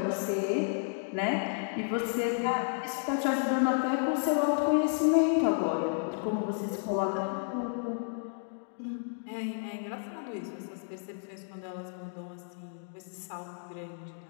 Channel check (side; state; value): right; silent; digital silence